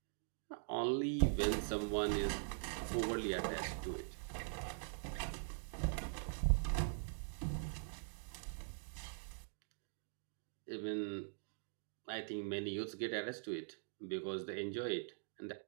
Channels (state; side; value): silent; left; digital silence